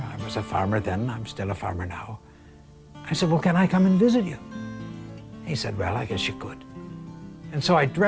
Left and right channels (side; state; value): both; identical; correlation 1.00